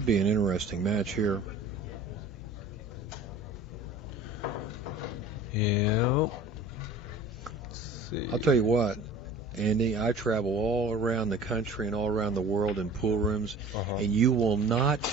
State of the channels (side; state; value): both; normal; correlation 0.43